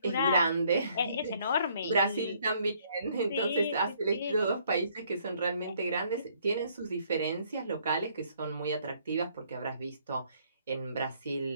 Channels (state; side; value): inverted; both; correlation -0.65